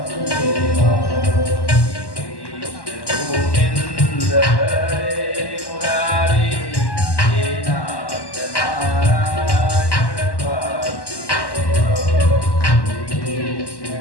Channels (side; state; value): right; late; 1.1 ms